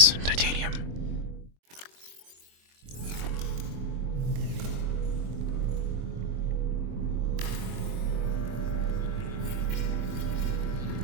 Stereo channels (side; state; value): left; late; 23 ms